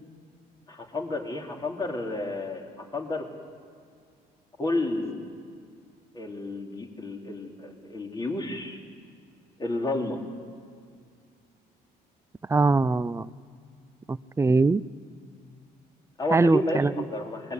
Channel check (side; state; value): both; normal; correlation 0.84